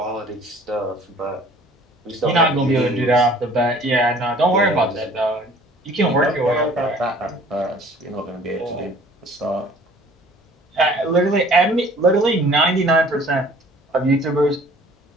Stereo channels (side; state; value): both; normal; correlation 0.52